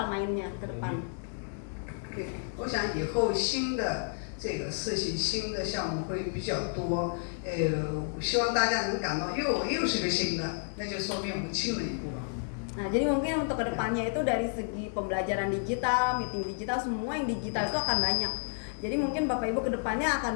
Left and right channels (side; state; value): right; silent; digital silence